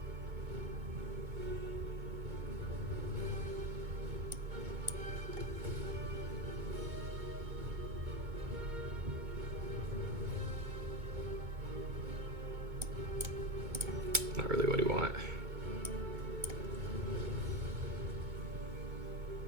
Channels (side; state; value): left; late; 2.2 ms